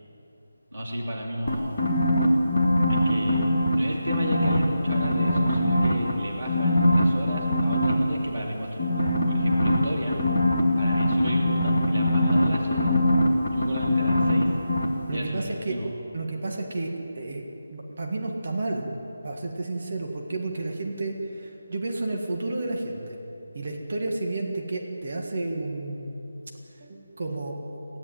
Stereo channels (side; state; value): both; inverted; correlation -0.86